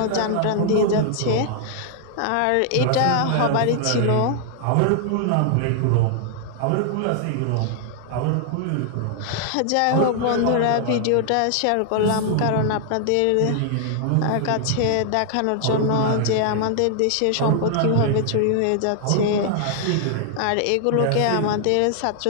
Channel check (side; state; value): both; different; correlation 0.00